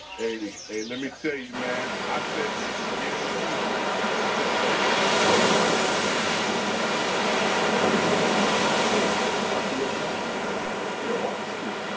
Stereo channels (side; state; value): both; identical; correlation 1.00